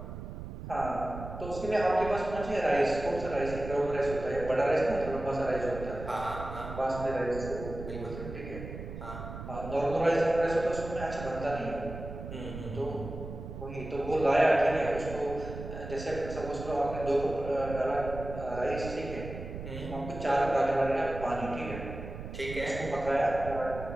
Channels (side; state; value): right; noise; rumble, 9 dB below the sound